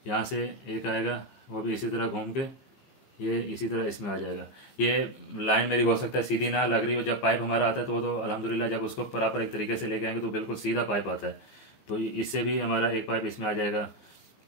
यहाँ से एक आएगा, वो भी इसी तरह घूम के ये इसी तरह इसमें आ जाएगा। ये लाइन मेरी हो सकता है सीधी ना लग रही हो, जब पाइप हमारा आता है तो अल्हम्दुलिल्लाह जब उसको प्रॉपर एक तरीके से लेके आएंगे तो बिल्कुल सीधा पाइप आता है, तो इससे भी हमारा एक पाइप इसमें आ जाएगा।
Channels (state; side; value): late; right; 15 ms